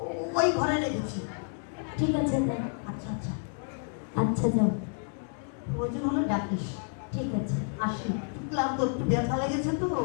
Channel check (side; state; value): right; silent; 58 dB below the other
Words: ওই ঘরে রেখেছি। ঠিক আছে দাদা। আচ্ছা আচ্ছা, আচ্ছা যাও। প্রয়োজন হলে ডাকিস। ঠিক আছে। আসি, ক্লান্ত, একটু ব্যথা লেগেছে তো,